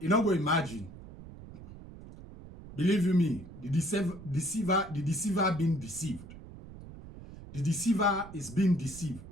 you know, go imagine. Believe you me, the deceiver being deceived. The deceiver is being deceived.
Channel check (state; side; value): noise; right; rumble, 16 dB below the sound